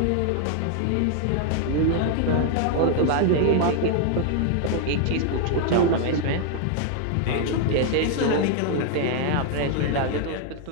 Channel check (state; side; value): different; both; correlation 0.00